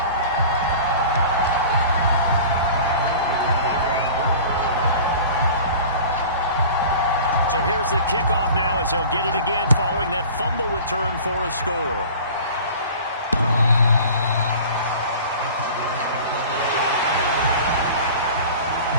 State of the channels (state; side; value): inverted; both; correlation -0.41